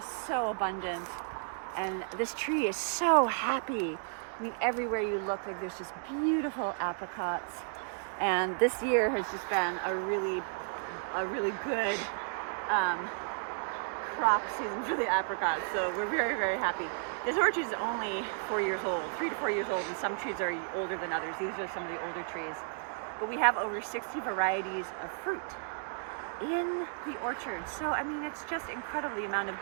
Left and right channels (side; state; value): left; silent; digital silence